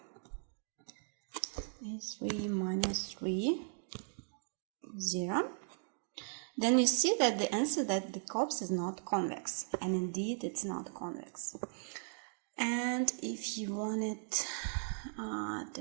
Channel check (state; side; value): silent; left; digital silence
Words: A3 minus 3, 0. Then you see that the answer that the COPS is not convex, and indeed it's not convex. And if you want it to